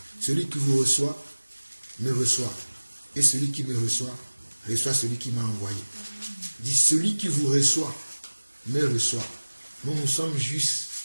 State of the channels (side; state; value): both; inverted; correlation -1.00